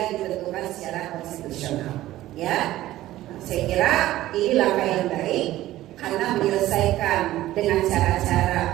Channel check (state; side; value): quieter; left; 15.2 dB